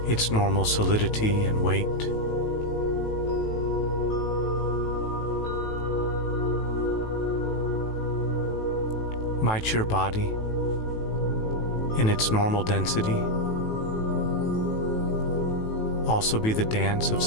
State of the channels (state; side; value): late; right; 18 ms